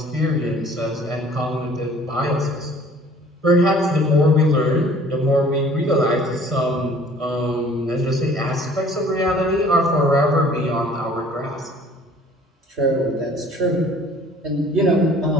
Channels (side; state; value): both; normal; correlation 0.53